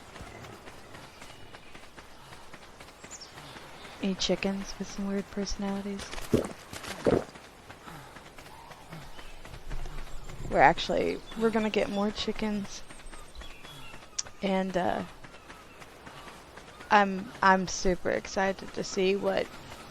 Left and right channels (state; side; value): identical; both; correlation 1.00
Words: Any chickens with some weird personalities? We're gonna get more chickens, and I'm super excited to see what